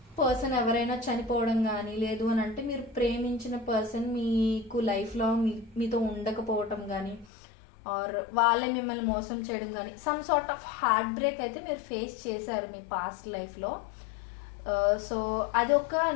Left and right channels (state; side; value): drops out; right; at 7.3 s